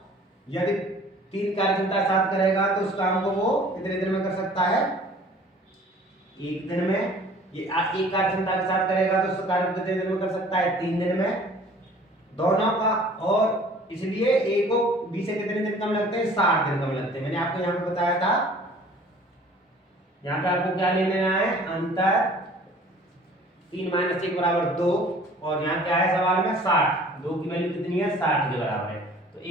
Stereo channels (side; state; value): both; normal; correlation 0.50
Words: यदि 3 कार्य क्षमता साथ करेगा तो उस काम को वो कितने दिन में कर सकता है, 1 दिन में, ये एक कार्य क्षमता के साथ करेगा तो उसका कार्य कितने दिन में कर सकता है? 3 दिन में दोनों का। और इसलिए ए को बी से कितने दिन कम लगते हैं? 60 दिन कम लगते हैं। मैंने आपको यहाँ पे बताया था, यहाँ पे आपको क्या ले लेना है? अंतर 3 - 1 = 2 और यहाँ क्या है सवाल में? 60। 2 की वैल्यू कितनी है? 60 के बराबर है। तो